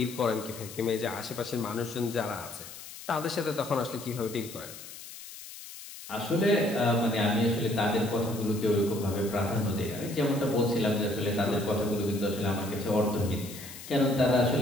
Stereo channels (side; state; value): left; noise; hiss, 14 dB below the sound